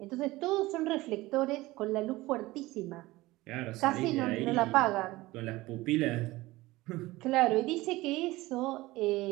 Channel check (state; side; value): quieter; left; 19.3 dB